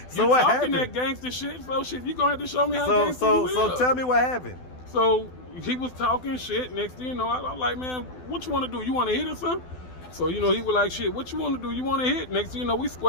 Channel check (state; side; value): late; right; 12 ms